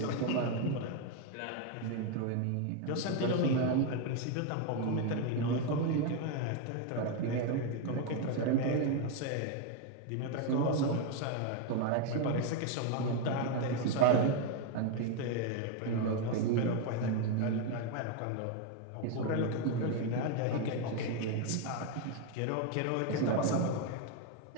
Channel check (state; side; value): different; both; correlation 0.01